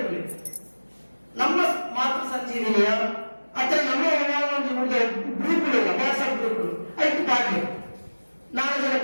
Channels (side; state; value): both; inverted; correlation -1.00